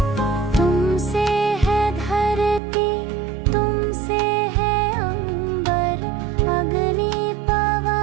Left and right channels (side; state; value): left; drops out; at 2.6 s